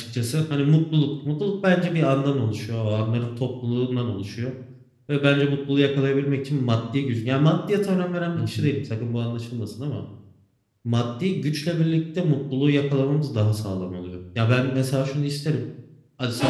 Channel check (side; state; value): both; identical; correlation 1.00